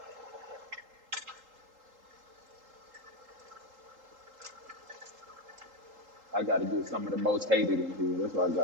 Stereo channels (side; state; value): left; late; 3.8 ms